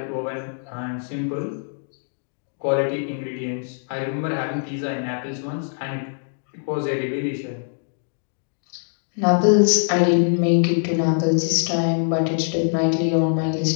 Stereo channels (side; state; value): right; silent; 63 dB below the other